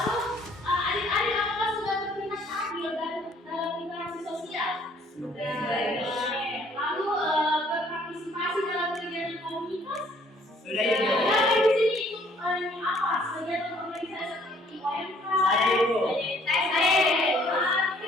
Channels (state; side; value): normal; both; correlation 0.61